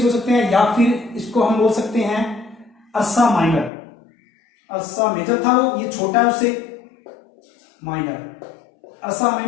बोल सकते हैं या फिर इसको हम बोल सकते हैं अर्सा माइनर। अर्सा मेजर था वो, ये छोटा है उससे, माइनर, अर्सा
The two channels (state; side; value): drops out; right; at 3.7 s